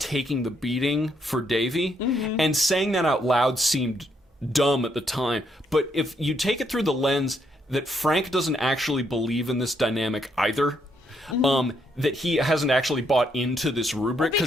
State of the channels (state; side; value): normal; both; correlation 0.74